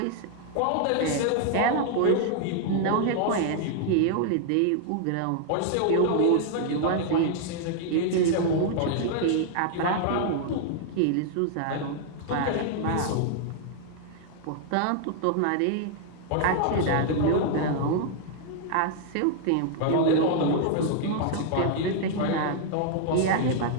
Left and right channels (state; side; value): different; both; correlation 0.00